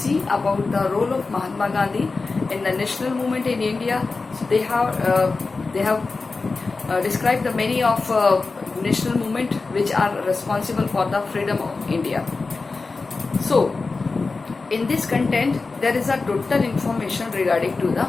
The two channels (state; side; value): quieter; right; 4.0 dB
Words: about the role of Mahatma Gandhi in the national movement in India. So they have describe the many of national movement which are responsible for the freedom of India. So in this content there is a total information regarding to the